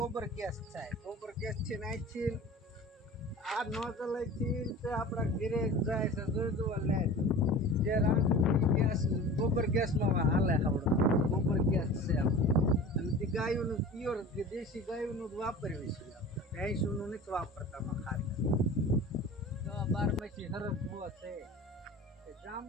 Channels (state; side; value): normal; both; correlation 0.38